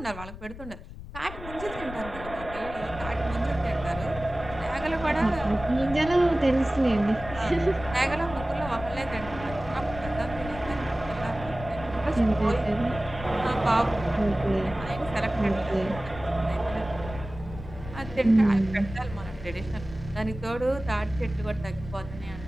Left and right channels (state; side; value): noise; left; rumble, 12 dB below the sound